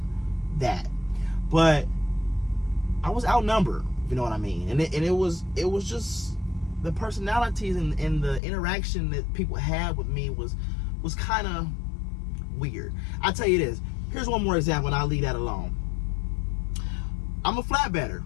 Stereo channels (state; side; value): drops out; right; at 8.4 s